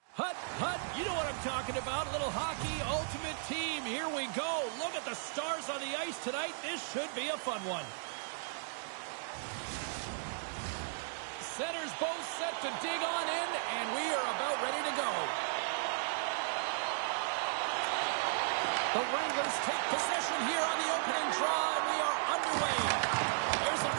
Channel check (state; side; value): silent; left; digital silence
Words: hut, hut. You know what I'm talking about. A little hockey ultimate team. Here we go. Look at the stars on the ice tonight. This should be a fun one. Centers both set to dig on in, and we are about ready to go. The Wranglers take possession here on the opening draw, and we are underway. There's a